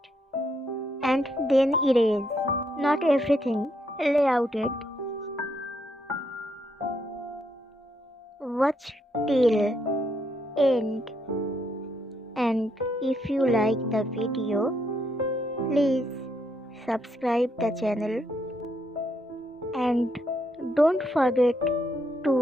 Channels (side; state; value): both; normal; correlation 0.76